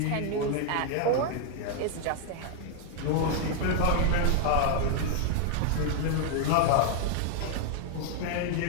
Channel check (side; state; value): both; different; correlation 0.00